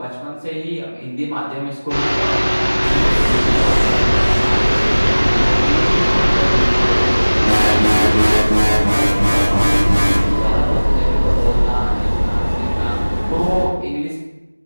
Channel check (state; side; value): inverted; both; correlation -1.00